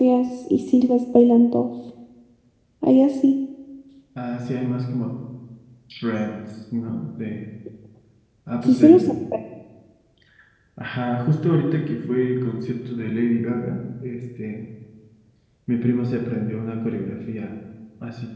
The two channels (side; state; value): both; identical; correlation 1.00